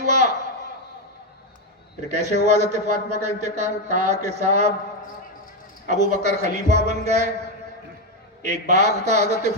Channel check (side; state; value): both; normal; correlation 0.07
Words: پھر کیسے ہوا حضرت فاطمہ کا انتقال؟ کہا کہ صاحب ابو بکر خلیفہ بن گئے، ایک باغ تھا حضرت